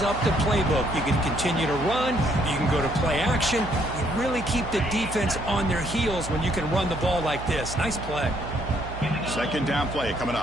up the playbook. You can continue to run. You can go to play action. You really keep the defense on their heels when you can run the ball like this. Nice play. Second down play coming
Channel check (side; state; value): right; noise; hum, 10 dB below the sound